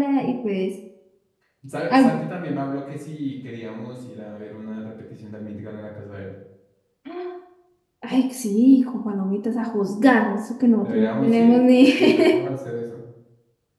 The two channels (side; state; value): both; identical; correlation 1.00